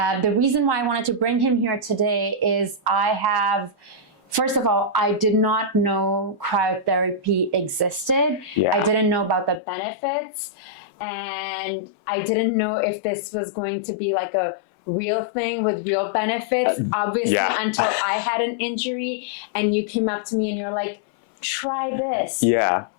The reason why I wanted to bring him here today is first of all, I did not know cryotherapy existed. I didn't know about the benefits, and I didn't know if this was going to be like a real thing with real benefits, obviously, until I had an injury and you came up to me and you're like, try this.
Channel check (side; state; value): right; drops out; at 9.6 s